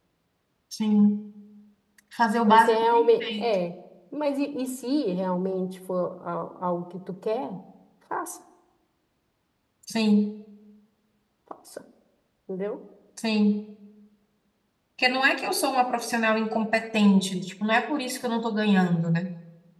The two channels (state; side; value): identical; both; correlation 1.00